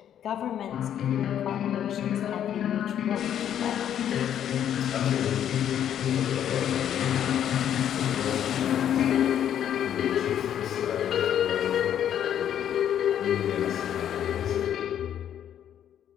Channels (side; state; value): right; quieter; 10.0 dB